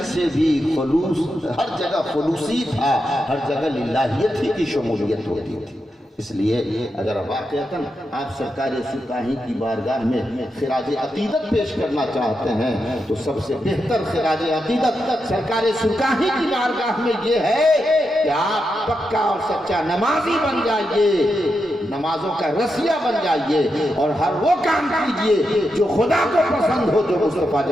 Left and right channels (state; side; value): normal; both; correlation 0.86